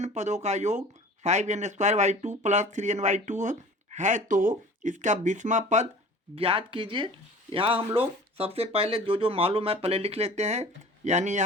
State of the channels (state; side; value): normal; both; correlation 0.43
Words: पदों का योग 5n² प्लस 3n/2 है, तो इसका 20वां पद ज्ञात कीजिए। यहाँ हम लोग सबसे पहले जो मालूम है पहले लिख लेते हैं। यानी